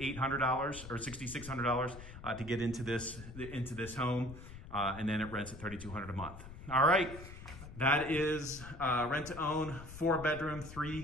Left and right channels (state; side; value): noise; left; rumble, 13 dB below the sound